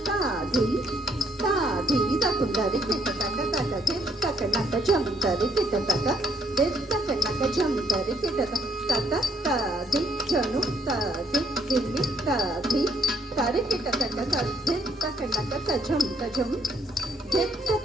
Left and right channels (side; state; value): both; normal; correlation 0.68